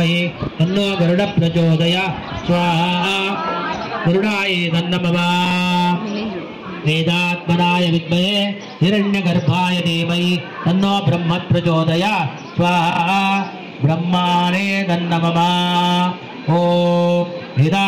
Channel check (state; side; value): identical; both; correlation 1.00